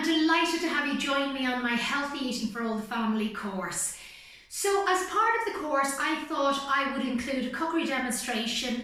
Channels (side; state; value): both; identical; correlation 1.00